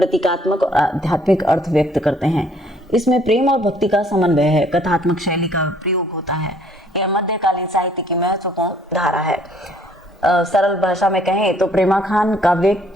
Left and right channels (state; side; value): normal; both; correlation 0.61